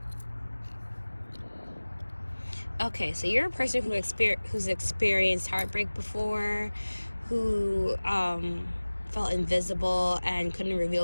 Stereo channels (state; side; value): inverted; both; correlation -1.00